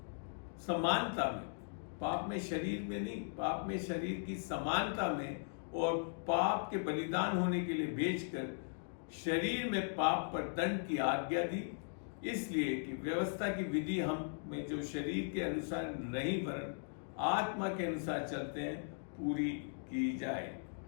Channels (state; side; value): silent; right; digital silence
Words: समानता में, पाप में शरीर में नहीं, पाप में शरीर की समानता में और पाप के बलिदान होने के लिए भेजकर शरीर में पाप पर दंड की आज्ञा दी, इसलिए कि व्यवस्था की विधि हम में जो शरीर के अनुसार नहीं वरन आत्मा के अनुसार चलते हैं पूरी की जाए।